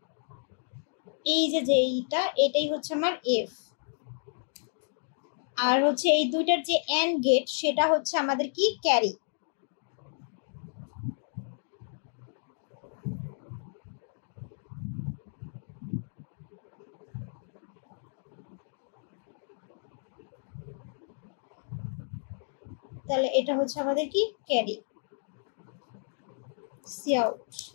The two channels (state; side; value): silent; right; digital silence